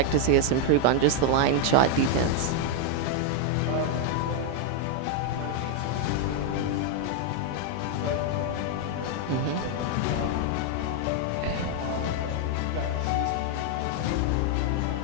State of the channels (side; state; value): both; different; correlation 0.00